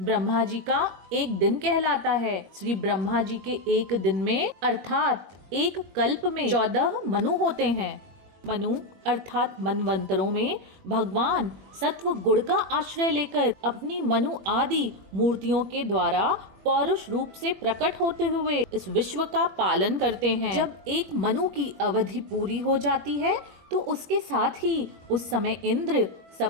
जी का एक दिन कहलाता है। श्री ब्रह्मा जी के एक दिन में अर्थात एक कल्प में 14 मनु होते हैं। मनु अर्थात मनवंतरों में भगवान सत्व गुण का आश्रय लेकर अपनी मनु आदि मूर्तियों के द्वारा पौरुष रूप से प्रकट होते हुए इस विश्व का पालन करते हैं। जब एक मनु की अवधि पूरी हो जाती है तो उसके साथ ही उस समय इंद्र,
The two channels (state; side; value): late; left; 21 ms